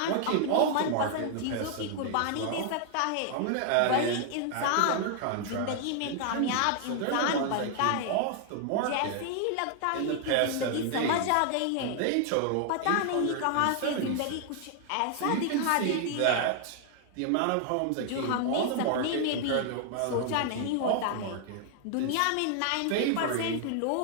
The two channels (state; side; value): different; both; correlation 0.00